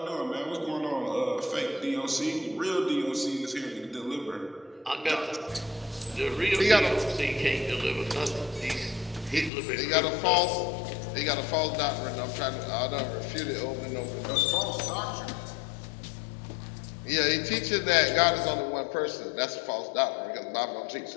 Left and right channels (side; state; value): right; drops out; at 9.5 s